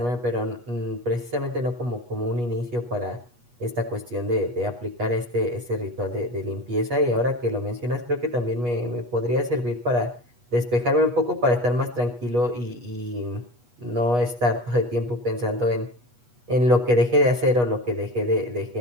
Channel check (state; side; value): late; left; 8.2 ms